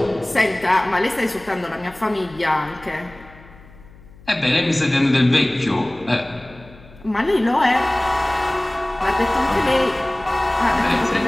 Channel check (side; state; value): left; noise; hum, 23 dB below the sound